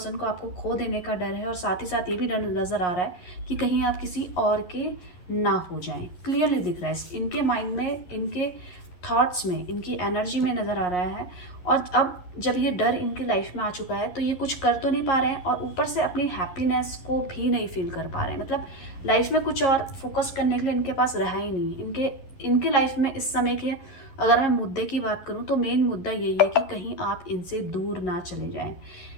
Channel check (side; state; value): right; late; 11 ms